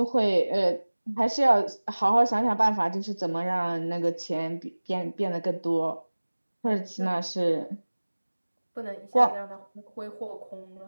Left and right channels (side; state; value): both; inverted; correlation -1.00